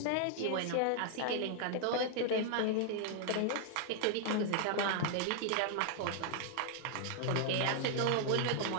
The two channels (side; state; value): both; different; correlation 0.00